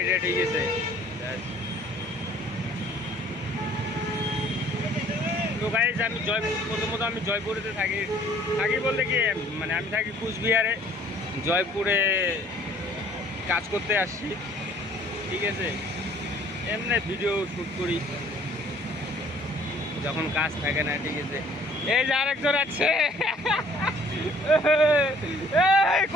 এটা, ঠিক আছে? তো গাইজ আমি প্রথমত আমি জয়পুরেতে থাকি বলতে কি, মানে আমি থাকি কুচবিহারে, জয়পুরে কাজ করতে আসছি, ঠিক আছে? এমনি ভিডিও শ্যুট করি যখন কাজ থাকে না, ঠিক আছে? এই যে আরেকজন আছে,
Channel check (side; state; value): both; normal; correlation 0.56